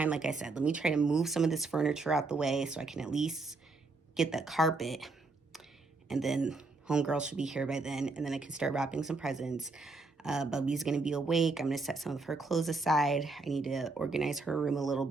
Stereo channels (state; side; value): quieter; left; 3.7 dB